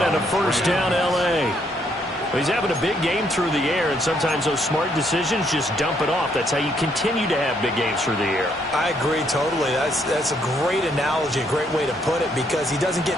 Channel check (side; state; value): both; normal; correlation 0.71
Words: and a first down L.A. He's having a big game through the air, and sometimes those smart decisions just dump it off. That's how you continue to have big games through the air. I agree totally. That's a great analogy, a great way to put it, because he doesn't